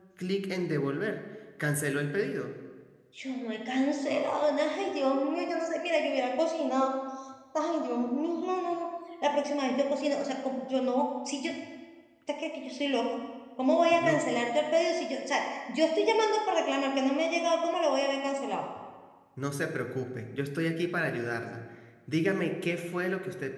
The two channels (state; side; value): identical; both; correlation 1.00